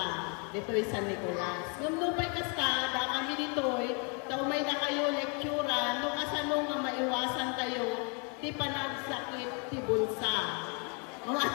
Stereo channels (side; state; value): right; quieter; 36.1 dB